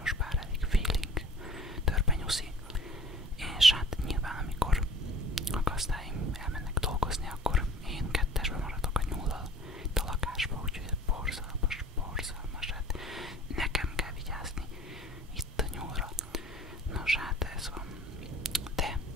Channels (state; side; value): normal; both; correlation 0.47